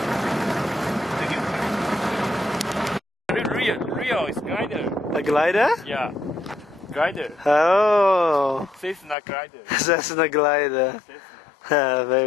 Real is glider. A glider? Yeah, glider. Oh, Cessna glider. Cessna glider. Cessna.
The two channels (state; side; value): drops out; right; at 9.2 s